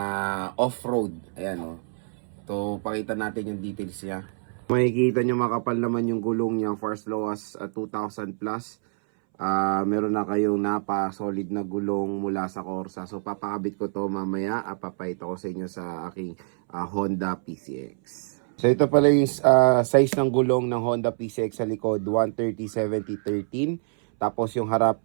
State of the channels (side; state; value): left; silent; 61 dB below the other